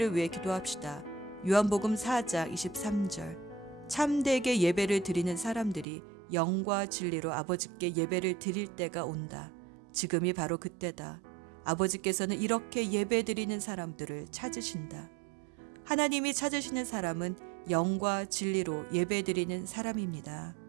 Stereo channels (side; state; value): left; drops out; at 5.9 s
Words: 위해 기도합시다. 요한복음 4장 23절. 참되게 예배를 드리는 사람들이 영과 진리로 아버지께 예배를 드릴 때가 온다. 지금이 바로 그때다. 아버지께서는 이렇게 예배 드리는 사람들을 찾으신다. 하나님이 찾으시는 사람은 영과 진리로 예배 드리는 사람입니다.